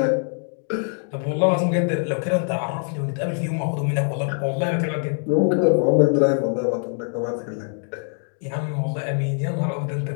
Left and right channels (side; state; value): right; silent; 56 dB below the other